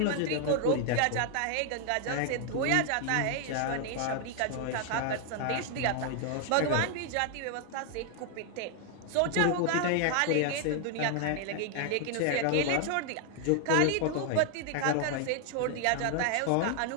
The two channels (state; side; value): different; both; correlation 0.00